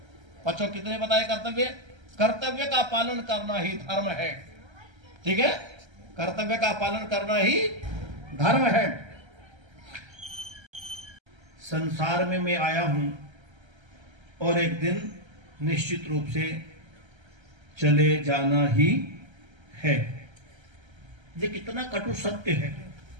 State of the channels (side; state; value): left; late; 1.3 ms